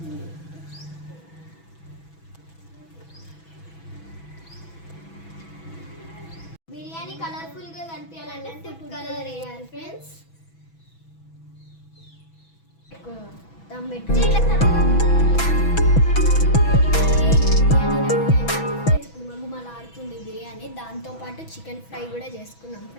బిర్యానీ కలర్ఫుల్గా కనిపించాలంటే ఫుడ్ కలర్ వేయాలి ఫ్రెండ్స్. దమ్ పెట్టి గుమగుమలాడుతుంది బిర్యానీ. దాంతోపాటు చికెన్ ఫ్రై కూడా చేసుకున్నాం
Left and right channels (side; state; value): right; late; 6.1 ms